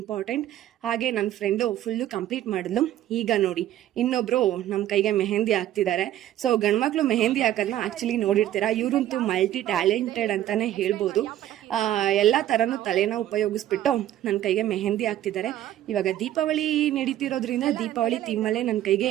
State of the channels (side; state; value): left; quieter; 12.6 dB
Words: ಹಾಗೆ ನನ್ನ ಫ್ರೆಂಡು ಫುಲ್ಲು ಕಂಪ್ಲೀಟ್ ಮಾಡಿದ್ಲು. ಈಗ ನೋಡಿ, ಇನ್ನೊಬ್ರು ನಮ್ಮ ಕೈಗೆ ಮೆಹಂದಿ ಹಾಕ್ತಿದ್ದಾರೆ. ಸೊ ಗಂಡ್ಮಕ್ಳು ಮೆಹಂದಿ ಹಾಕೋದನ್ನ ಆಕ್ಚುಲಿ ನೋಡಿರ್ತೀರಾ. ಇವರಂತೂ ಮಲ್ಟಿ ಟ್ಯಾಲೆಂಟೆಡ್ ಅಂತಾನೆ ಹೇಳ್ಬೋದು. ಎಲ್ಲ ತರನು ತಲೆನ ಉಪಯೋಗಿಸ್ಬಿಟ್ಟು ನನ್ನ ಕೈಗೆ ಮೆಹಂದಿ ಹಾಕ್ತಿದ್ದಾರೆ. ಇವಾಗ ದೀಪಾವಳಿ ನಡೀತಿರೋದ್ರಿಂದ ದೀಪಾವಳಿ ಥೀಮಲ್ಲೇ ನನ್ನ